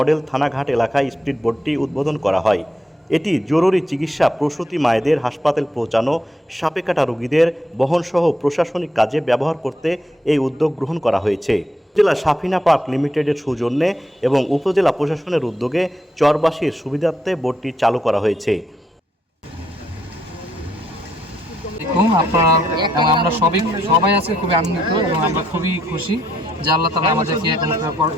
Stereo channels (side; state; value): both; normal; correlation 0.77